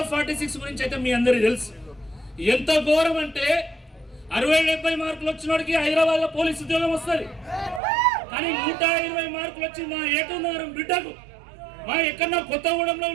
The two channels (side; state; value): left; drops out; at 7.8 s